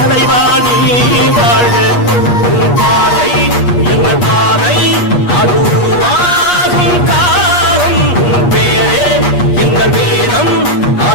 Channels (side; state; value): right; late; 8.4 ms